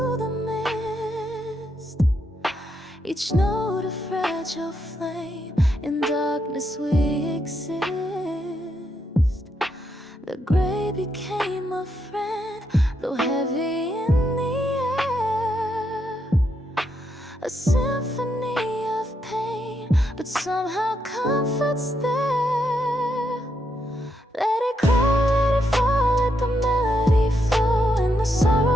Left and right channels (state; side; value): normal; both; correlation 0.79